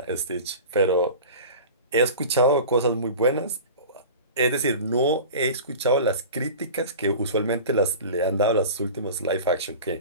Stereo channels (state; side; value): inverted; both; correlation -0.36